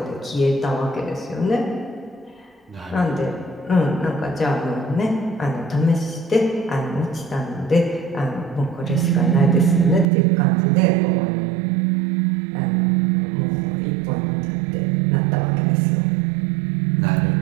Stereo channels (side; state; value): left; drops out; at 10.1 s